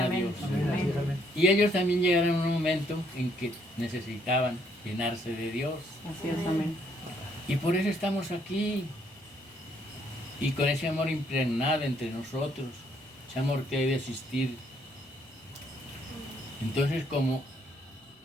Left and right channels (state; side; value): normal; both; correlation 0.69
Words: amén, Dios? amén, amén. Y ellos también llegaron en un momento en que necesitaban llenarse de Dios. Así es, amén. Y por eso estamos aquí. Y con ese amor impregnado entre nosotros, ese amor que debe existir. Entonces, como